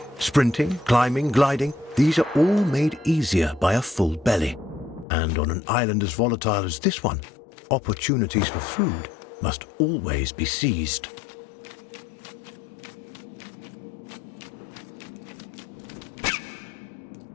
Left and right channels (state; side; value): drops out; right; at 5.1 s